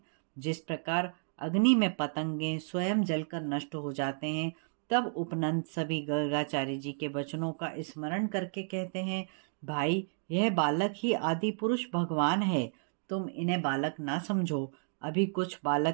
जिस प्रकार अग्नि में पतंगे स्वयं जलकर नष्ट हो जाते हैं, तब उपनंद सभी गर्गाचार्य जी के वचनों का स्मरण करके कहते हैं, भाई यह बालक ही आदि पुरुष भगवान है, तुम इन्हें बालक ना समझो। अभी कुछ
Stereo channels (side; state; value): left; silent; digital silence